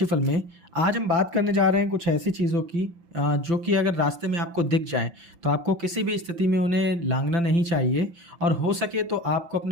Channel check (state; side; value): late; left; 5.8 ms